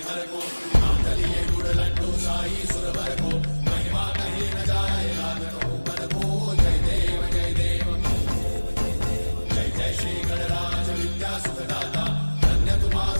हर को मातलिये गुड़ लड्डू साई सुर भर को महिमा कही न जाए रात कहूँ पद को जय देव जय देव जय जय श्री गणराज विद्या सुखदाता धन्य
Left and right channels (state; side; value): inverted; both; correlation -1.00